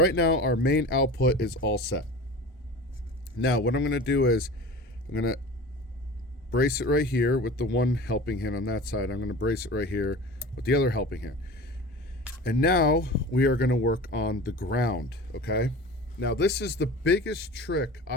now our main output is all set. Now what I'm going to do is I'm going to brace it right here with the one helping hand on that side. I'm going to brace it right here with the other helping hand. And now we are going to work on the ground, okay? Now this is the biggest trick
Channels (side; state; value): both; normal; correlation 0.36